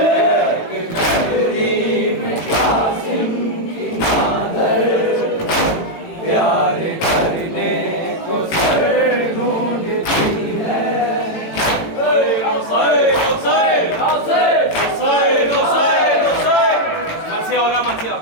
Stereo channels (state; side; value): late; right; 18 ms